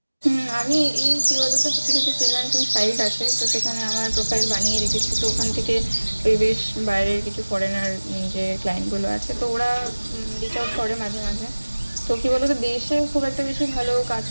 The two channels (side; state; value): both; inverted; correlation -1.00